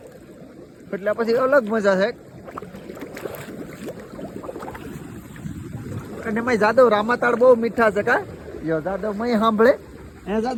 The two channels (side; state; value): both; identical; correlation 1.00